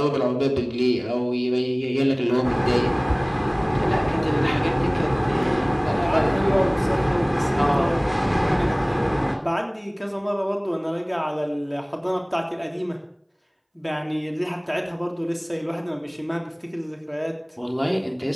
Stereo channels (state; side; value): identical; both; correlation 1.00